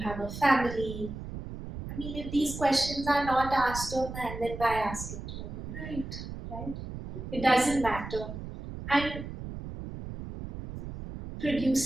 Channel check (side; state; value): right; noise; rumble, 9 dB below the sound